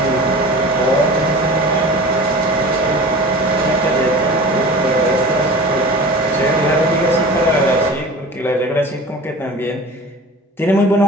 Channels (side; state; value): both; normal; correlation 0.37